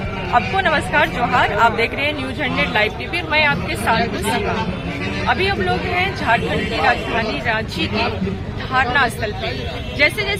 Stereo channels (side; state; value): both; identical; correlation 1.00